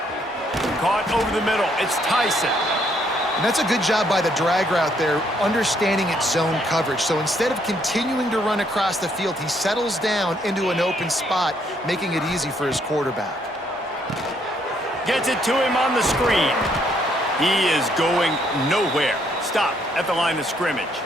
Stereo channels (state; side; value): normal; both; correlation 0.70